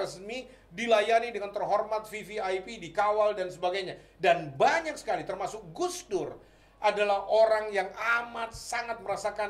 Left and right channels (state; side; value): identical; both; correlation 1.00